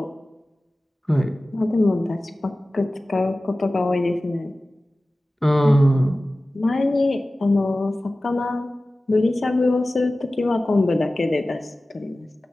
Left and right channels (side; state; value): both; normal; correlation 0.96